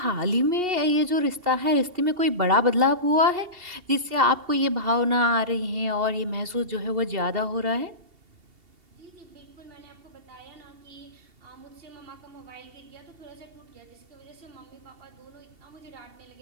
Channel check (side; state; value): left; late; 2.7 ms